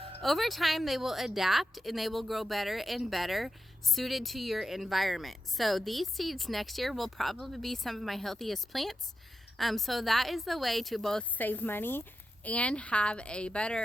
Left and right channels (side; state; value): both; normal; correlation 0.88